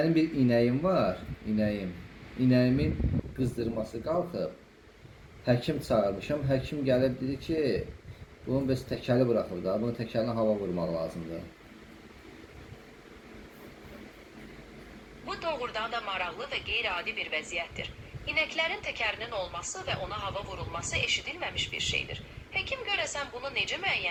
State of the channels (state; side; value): identical; both; correlation 1.00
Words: bir inəyim var, inəyim. İnəyimin qızdırması qalxıb. Həkim çağırmışam. Həkim gəlib dedi ki, bunun bəs təkəli buraxıb da, bunun təkəlinə hava vurmaq lazımdır. Bu doğrudan da maraqlı və qeyri-adi bir vəziyyətdir. İnəklərin təkərinin olması və ona hava vurulması eşidilməmiş bir şeydir. Həkim görəsən bunu necə